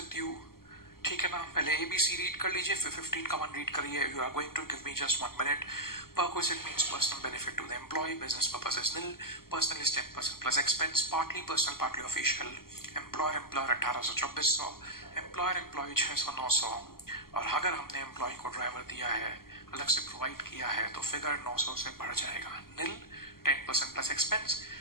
you. ठीक है ना? पहले ABC रीड कर लीजिए, फिर 15 का 1 रीड करिए। You are going to give me just 1 minute. Perquisite means personal benefit to the employee. Business purpose is nil. Personal is 10% plus expense. Partly personal, partly official. Employer 1800 2400. Employer employee 600 900। और अगर हमने employ को driver दिया है, अलग से provide किया है, तो फिगर 900 से बढ़ जाएगा। nil, 10% plus expense,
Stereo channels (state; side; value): late; right; 0.92 ms